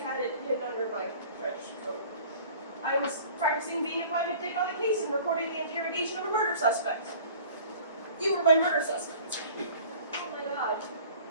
it hidden under my trench coat. I was practicing being a private dick on the case and recording the interrogation of a murder suspect. You were my murder suspect. Oh my god.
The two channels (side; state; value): both; inverted; correlation -0.47